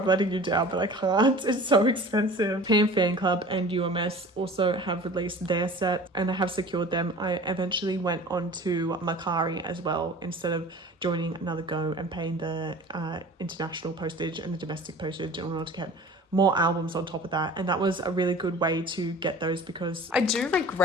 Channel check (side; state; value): both; normal; correlation 0.42